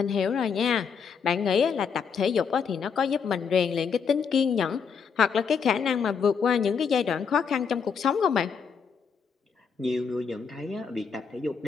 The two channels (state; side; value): quieter; right; 6.3 dB